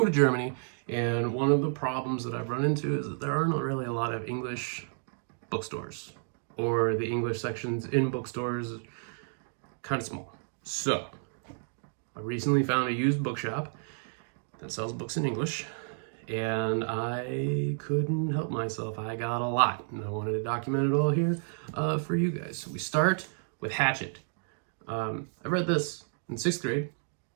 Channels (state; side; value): silent; left; digital silence